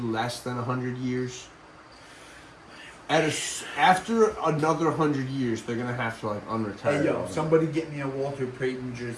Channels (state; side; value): identical; both; correlation 1.00